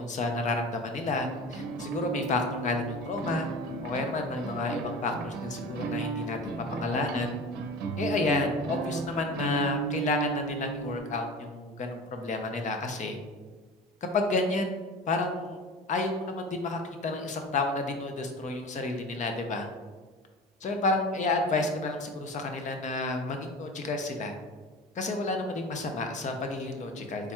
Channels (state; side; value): normal; both; correlation 0.35